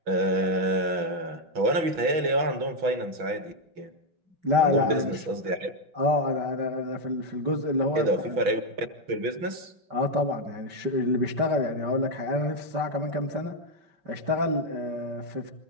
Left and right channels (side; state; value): left; late; 6.1 ms